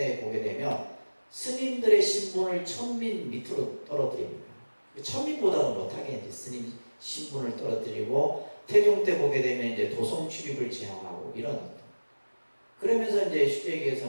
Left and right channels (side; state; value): both; inverted; correlation -1.00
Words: 스님들의 신분을 천민 밑으로 떨어뜨립니다. 천민보다는 못하게 이제 스님 신분을 떨어뜨리고 태종 때 보게 되면 이제 도성 출입을 제한하고 이런. 그러면서 이제 쉽게 얘기해서